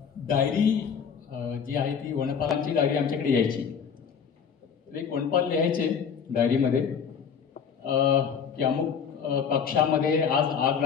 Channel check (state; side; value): quieter; right; 6.9 dB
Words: डायरी जी आहे ती वनपालांची डायरी आमच्याकडे यायची. एक वनपाल लिहायचे डायरीमध्ये की अमुक कक्षामध्ये आज आग